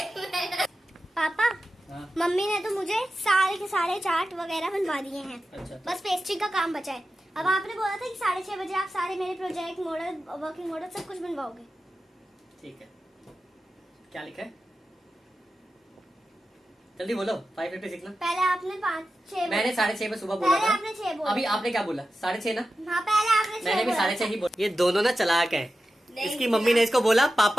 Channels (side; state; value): both; normal; correlation 0.93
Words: पापा, हाँ, मम्मी ने तो मुझे सारे के सारे चार्ट वगैरह बनवा दिए हैं। अच्छा। बस पेस्ट्री का काम बचा है। अब आपने बोला था कि 6:30 बजे आप सारे मेरे प्रोजेक्ट, मॉडल, वर्किंग मॉडल सब कुछ बनवाओगे। ठीक है। क्या लिखा है? जल्दी बोलो। 5:50 लिखना। पहले आपने 5-6 मैंने 6:30 पे सुबह बोला पहले था। आपने 6 बोला। अभी आपने क्या बोला? 6:30 ना? हाँ, पहले आपने 6 मैंने भी बोला 6:30 ही बोला। ये दोनों ना चालाक है। नहीं, इसकी मम्मी ने इसको बोला